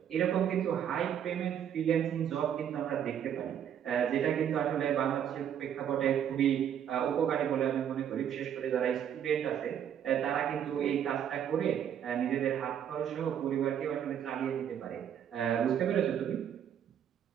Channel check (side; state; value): left; quieter; 9.2 dB